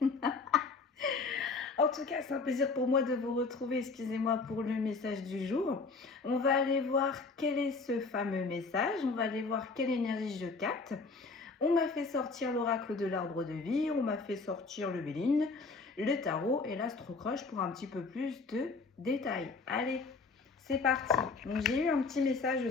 En tout cas, c'est un plaisir pour moi de vous retrouver. Excusez-moi pour le message du jour. On va aller voir quel est ce fameux message. On va aller voir quelle énergie je capte. On m'a fait sortir l'oracle de l'arbre de vie. On m'a fait sortir le Béline, le tarot et l'astrocroche pour un petit peu plus de détails. Allez, c'est parti. Donc, j'ai eu un petit message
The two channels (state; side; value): quieter; right; 4.2 dB